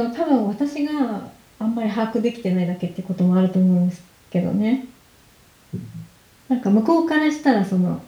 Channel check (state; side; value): identical; both; correlation 1.00